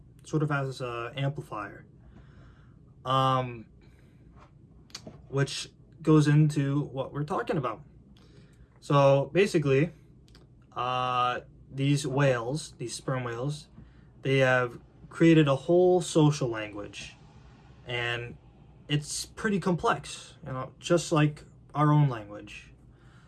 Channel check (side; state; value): both; identical; correlation 1.00